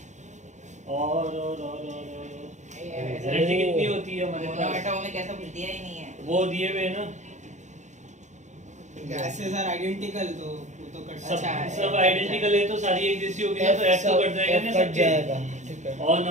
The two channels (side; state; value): left; late; 0.34 ms